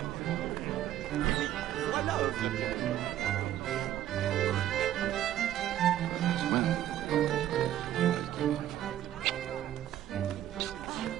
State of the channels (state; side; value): quieter; left; 12.3 dB